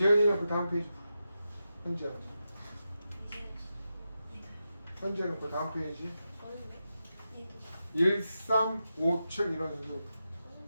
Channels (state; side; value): inverted; both; correlation -0.89